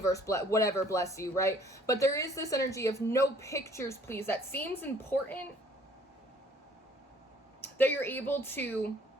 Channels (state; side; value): normal; both; correlation 0.58